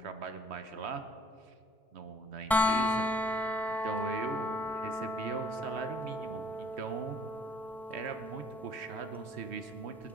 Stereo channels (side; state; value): both; normal; correlation 0.58